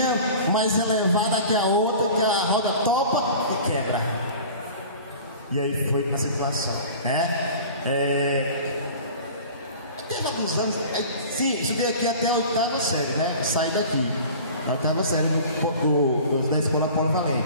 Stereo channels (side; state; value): both; inverted; correlation -0.41